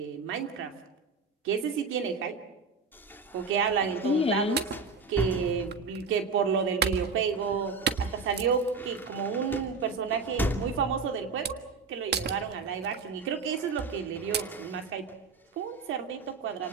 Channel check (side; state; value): left; quieter; 4.7 dB